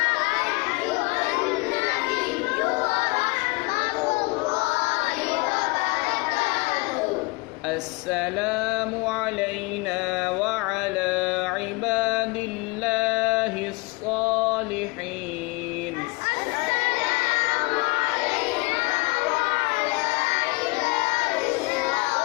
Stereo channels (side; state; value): right; quieter; 26.7 dB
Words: السلام علينا وعلى عباد الله الصالحين